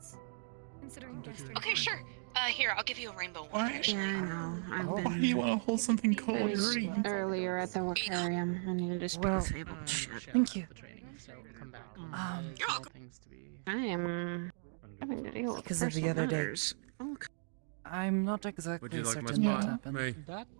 Considering guest Okay, sure. Here, I'll give you a rainbow one. Why? Actually. Yeah, I know. I've Oh. Why do you want to hold something cold? You're already. earlier at the aquarium. I needed to speak Well, disabled. Shit. Thank you. The training, so come back. You're welcome. Things to be. I am having to deal with Because of the personal other day. matters. Oh, I'm not would exactly you like my certain what spot? happened, Hey, That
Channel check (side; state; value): left; silent; digital silence